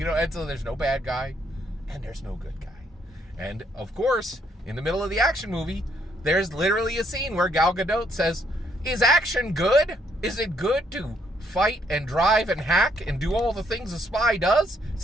so there's no bad guy and there's no good guy. And of course, in the middle of the action movie, there's literally a scene where Gal Gadot says, is action good? Is it good to fight and drive and hack and do all the things a spy does?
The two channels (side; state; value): both; normal; correlation 0.71